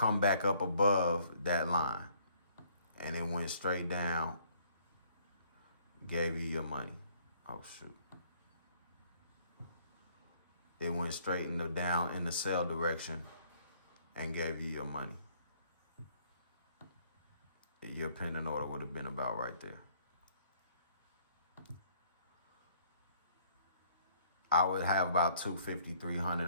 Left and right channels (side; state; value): both; inverted; correlation -0.63